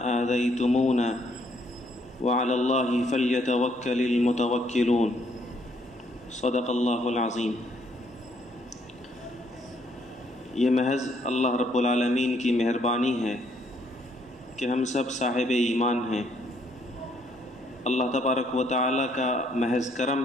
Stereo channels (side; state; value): both; normal; correlation 0.69